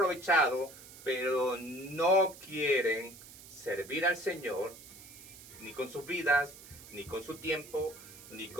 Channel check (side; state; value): right; noise; hiss, 17 dB below the sound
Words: pero no quieren servir al Señor, ni con sus vidas, ni con su tiempo, ni